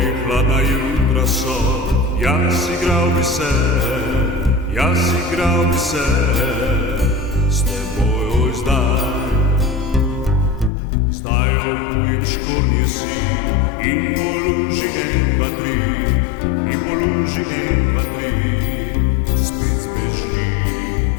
hladna jutra so, jaz igral bi se, s teboj oj zdaj. Zdaj obujem škornje si in poluži en, dva, tri, in poluži en, dva, tri. Spet zbeži,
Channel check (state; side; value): drops out; right; at 10.7 s